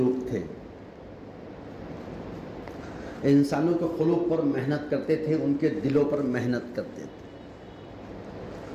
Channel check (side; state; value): both; identical; correlation 1.00